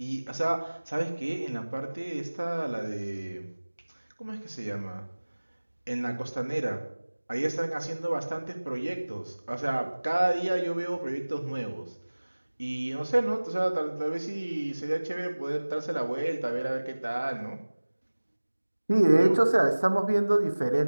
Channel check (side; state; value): both; inverted; correlation -1.00